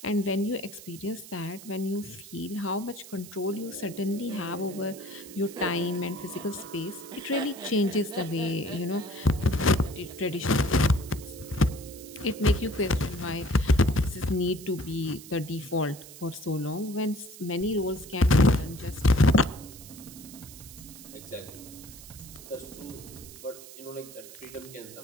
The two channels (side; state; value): right; noise; hiss, 16 dB below the sound